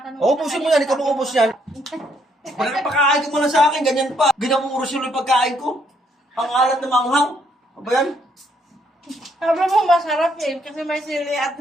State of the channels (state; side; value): normal; both; correlation 0.71